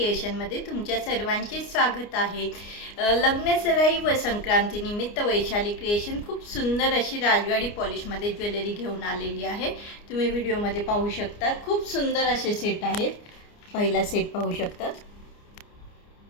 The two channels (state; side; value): late; right; 29 ms